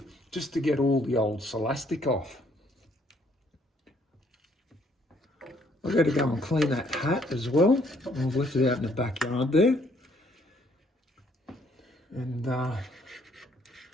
just to get all the old elastic off. I've got to go and clean that hat as well. I've left it out in the backyard there. And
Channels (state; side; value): normal; both; correlation 0.66